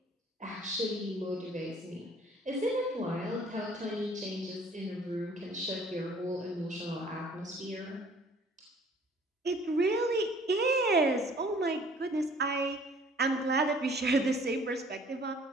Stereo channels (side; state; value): both; normal; correlation 0.55